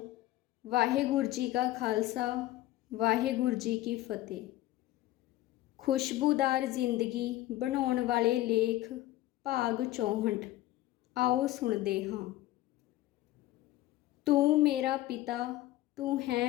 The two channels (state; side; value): quieter; right; 15.8 dB